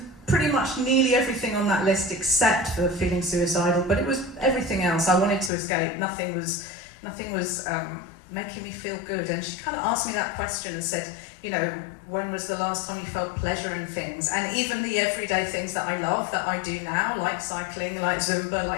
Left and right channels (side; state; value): right; drops out; at 5.5 s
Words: pretty much nearly everything on that list except for feeling suicidal, but it was everything else. I wanted to escape. Nothing was making me feel good. And she kind of asked me that question and said, when was the last time you felt pleasure in things? And even the everyday things that I love, that I do now, like cycling, like Zumba,